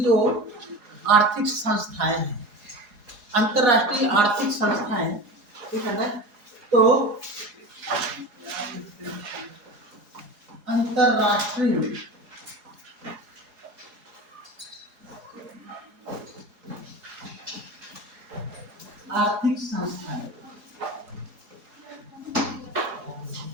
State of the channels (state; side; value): late; left; 4.8 ms